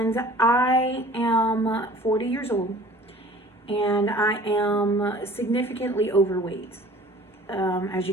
I am 40 years old, and I am significantly overweight, as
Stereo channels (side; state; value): both; normal; correlation 0.48